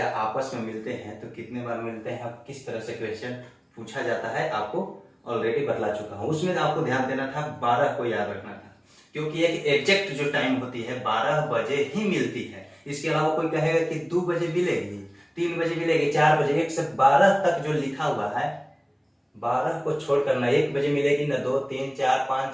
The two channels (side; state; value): both; identical; correlation 1.00